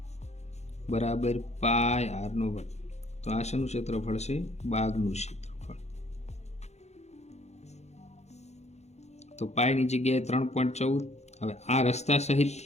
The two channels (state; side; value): late; right; 0.32 ms